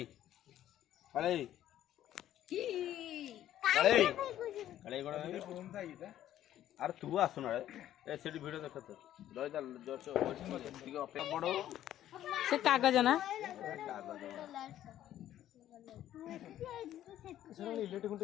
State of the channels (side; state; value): right; quieter; 12.2 dB